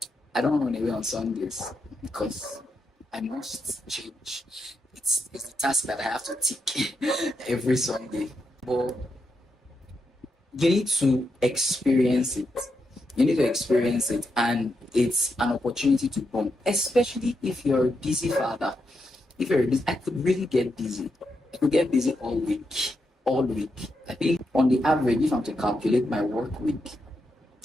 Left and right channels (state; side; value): normal; both; correlation 0.84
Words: I don't run away on Sundays because I must change. It's the task that I have to tick every Sunday. But you need to experience it. You need to experience it, and it's an opportunity to bond, especially if you're a busy father. If you're busy, I could really get busy. I could get busy all week. All week. I think on the average, if I'm to calculate my work week,